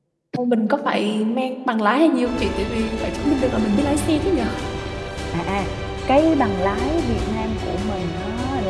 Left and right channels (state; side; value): identical; both; correlation 1.00